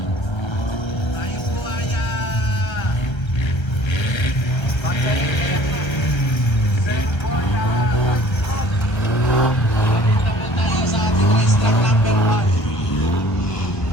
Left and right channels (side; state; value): right; late; 1.4 ms